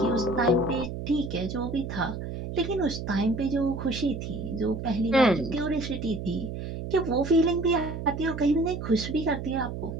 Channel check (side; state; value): right; noise; hum, 6 dB below the sound